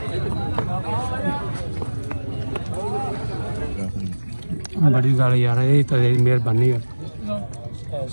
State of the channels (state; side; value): inverted; both; correlation -1.00